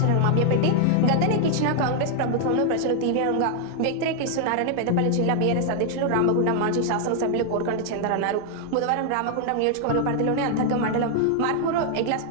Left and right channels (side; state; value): both; different; correlation 0.00